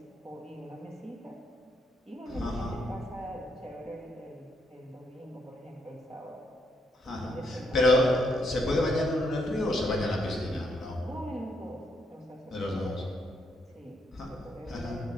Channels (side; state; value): both; normal; correlation 0.76